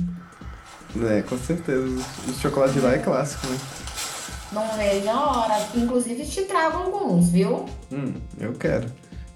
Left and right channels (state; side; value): identical; both; correlation 1.00